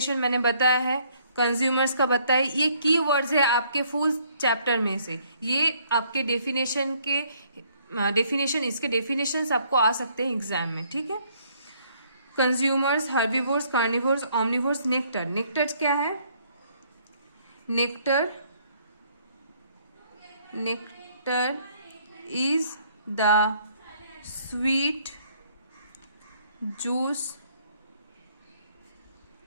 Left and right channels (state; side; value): inverted; both; correlation -0.65